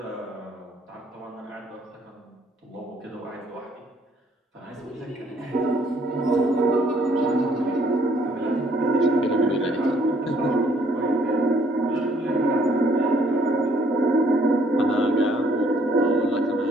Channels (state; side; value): normal; both; correlation 0.64